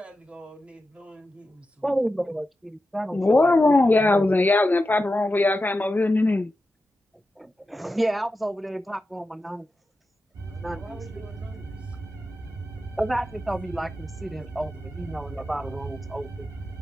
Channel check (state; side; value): normal; both; correlation 0.91